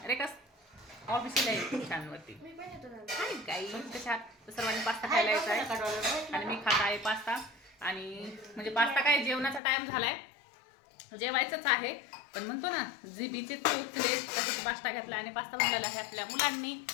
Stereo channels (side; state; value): right; drops out; at 9.6 s